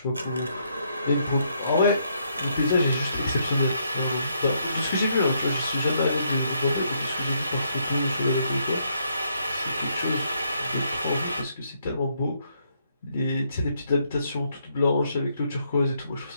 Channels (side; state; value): both; inverted; correlation -0.74